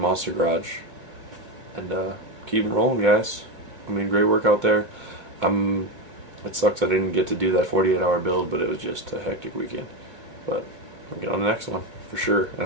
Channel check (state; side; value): late; left; 2.4 ms